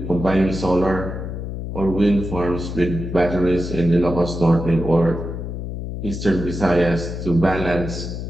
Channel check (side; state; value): left; noise; hum, 6 dB below the sound